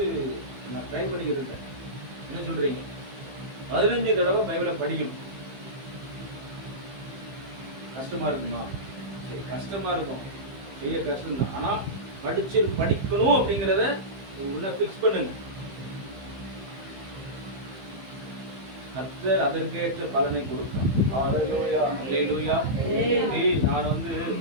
நான் ட்ரை பண்ணிக்கிட்டு இருக்கேன். என்ன சொல்றீங்க? 15 தடவை பைபிளை படிக்கணும். கஷ்டமா இருக்குமா? சரி, கஷ்டமா இருக்கும், பெரிய கஷ்டம் தான். ஆனா படிக்கணும் அப்படிங்கிறத உள்ள ஃபிக்ஸ் பண்ணுங்க. கர்த்தர் அதற்கேற்ற பலனை கொடுப்பார். ஹல்லேலூயா, ஹல்லேலூயா. நான்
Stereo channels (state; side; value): late; left; 15 ms